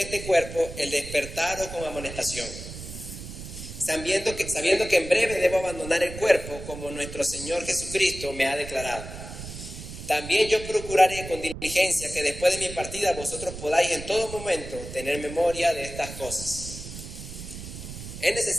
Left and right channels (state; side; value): noise; right; rumble, 11 dB below the sound